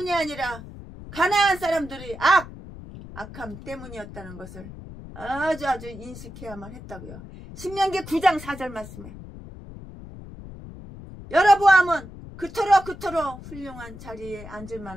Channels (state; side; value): noise; left; rumble, 14 dB below the sound